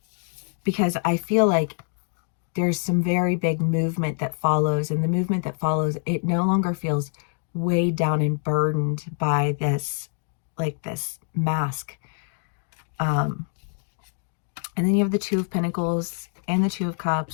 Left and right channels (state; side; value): silent; right; 62 dB below the other